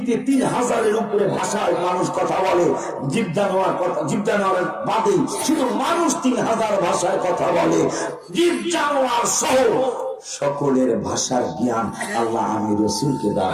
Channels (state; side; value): identical; both; correlation 1.00